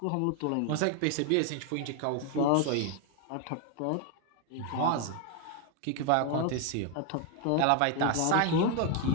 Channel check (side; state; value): both; different; correlation 0.01